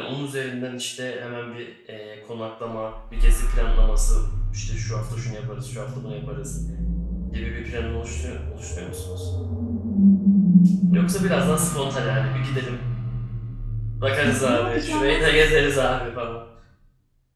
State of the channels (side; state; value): both; identical; correlation 1.00